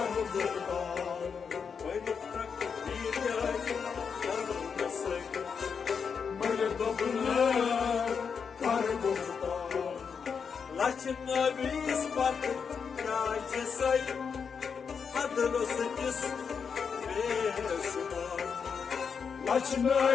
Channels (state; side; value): quieter; right; 6.2 dB